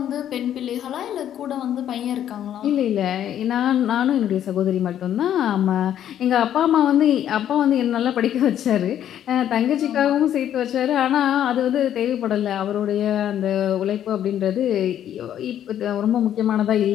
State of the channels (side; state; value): right; quieter; 10.6 dB